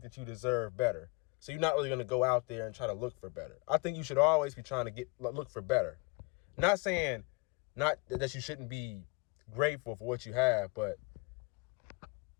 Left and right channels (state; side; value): quieter; right; 28.4 dB